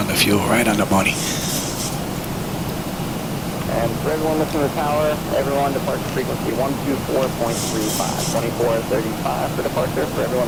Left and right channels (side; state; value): both; identical; correlation 1.00